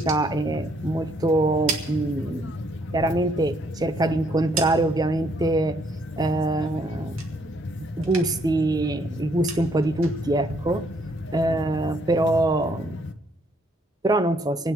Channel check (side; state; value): both; normal; correlation 0.68